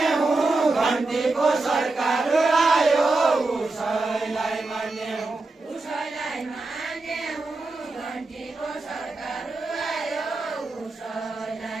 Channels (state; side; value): quieter; left; 3.3 dB